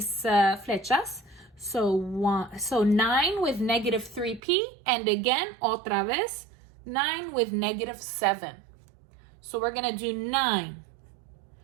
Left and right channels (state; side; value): drops out; left; at 4.4 s